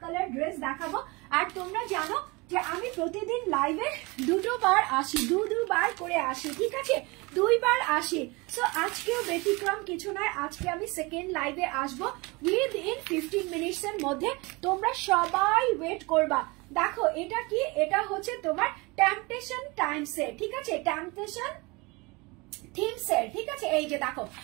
কালার ড্রেস দেখাবো। আর তোমরা জানো যে আমি প্রতিদিন লাইভে দুবার আসি, দুবার করে আসি, ঠিক আছে, 2 বার আসি। সো আজকেও ব্যতিক্রম কিছু নয়, আজকে আমি সেকেন্ড লাইভে আসবো উইদিন 15 মিনিটস এর মধ্যে। তোমরা সবাই ওয়েট করবা। দেখো এটা কি, এটা হচ্ছে তোমার টেম্পটেশন টাইমসের, ঠিক আছে, টেম্পটেশন থিমসের, ঠিক আছে। এই যে দেখো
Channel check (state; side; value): quieter; left; 25.7 dB